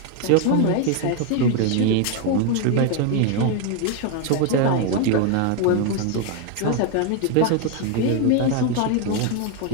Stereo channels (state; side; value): different; both; correlation 0.01